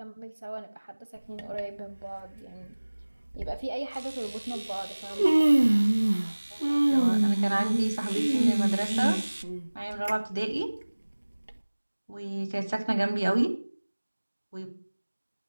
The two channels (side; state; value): both; inverted; correlation -1.00